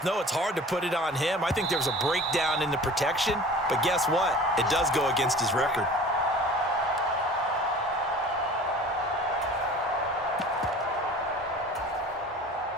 know it's hard to put it on him. I think there was a breakdown in the protection, but guess what? It does go against his record.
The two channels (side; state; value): both; normal; correlation 0.42